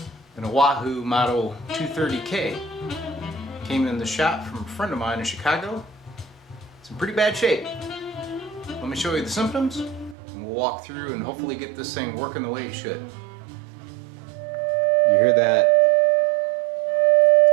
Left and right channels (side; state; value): left; drops out; at 10.2 s